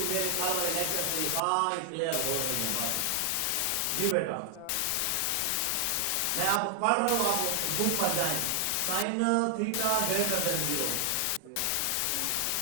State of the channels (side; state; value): both; different; correlation 0.00